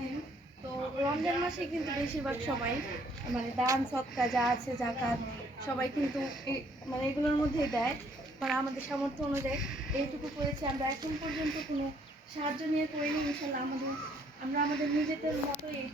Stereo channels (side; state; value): both; normal; correlation 0.65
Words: তো রমজান মাসে কিন্তু বেশিরভাগ সবাই মানে দান সদকা যা আছে জাকাত সবাই কিন্তু মানে এগুলোর মধ্যেই দেয়। মানে আমাদের সামর্থ্য অনুযায়ী এইটুকু করেছি আমরা, এখন পর্যন্ত কোনো সাহায্য নিয়ে করিনি। ইনশাল্লাহ আমরা আমাদের নিজেদের মতো